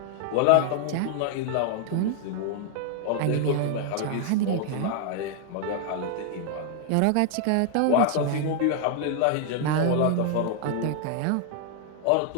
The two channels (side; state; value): both; different; correlation 0.00